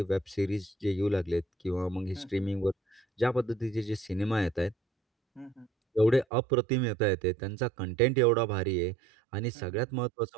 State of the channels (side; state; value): left; drops out; at 6.2 s